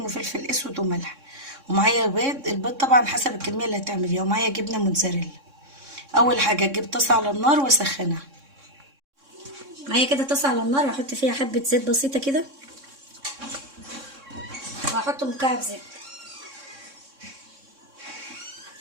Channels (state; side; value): late; left; 3.6 ms